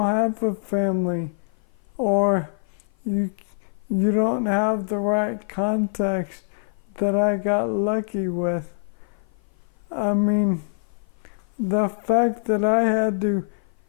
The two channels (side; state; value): right; silent; 55 dB below the other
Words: have a family, or you don't have the right contacts that I got lucky with? I mean, the fact that I had to